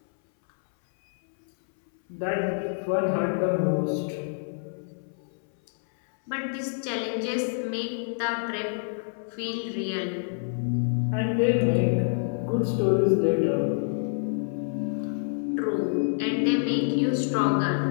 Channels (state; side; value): silent; right; 60 dB below the other